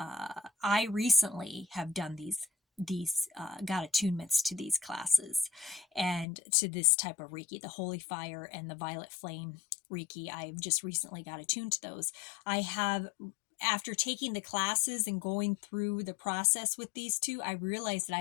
recently have done these got attunements to these classes and to this type of Reiki, the holy fire and the violet flame Reiki. I've just recently got attuned to those. I have, after taking the classes and going through the process with these two, I realized that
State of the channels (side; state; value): right; drops out; at 6.2 s